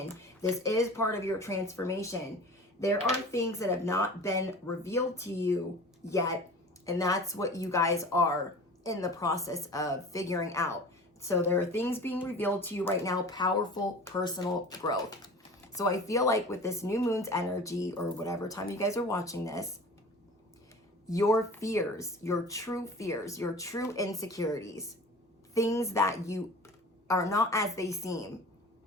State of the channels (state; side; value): normal; both; correlation 0.39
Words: This is part of your transformation. There are things that have not been revealed to you yet, and that's what you guys are in the process of figuring out. So there are things being revealed to you right now, powerful personal growth. So I feel like with this new moon's energy, or whatever time you guys are watching this, your fears, your true insecurities, things that you are not as they seem,